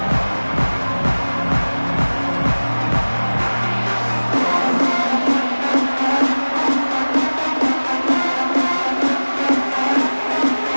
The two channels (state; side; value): inverted; both; correlation -1.00